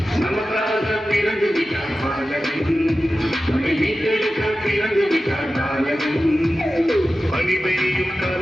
நமக்காக பிறந்து விட்டார் பாலன், நம்மை மீட்டெடுக்க பிறந்து விட்டார் பாலன். பனி பெய்யும்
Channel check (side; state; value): both; normal; correlation 0.94